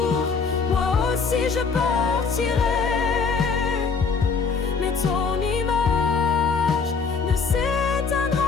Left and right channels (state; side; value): quieter; right; 5.1 dB